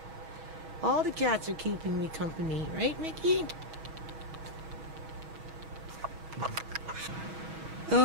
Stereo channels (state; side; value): late; left; 6.2 ms